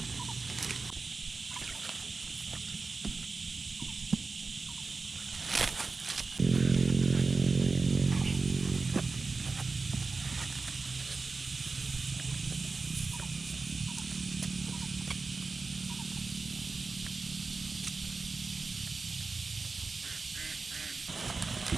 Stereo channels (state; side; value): quieter; left; 4.0 dB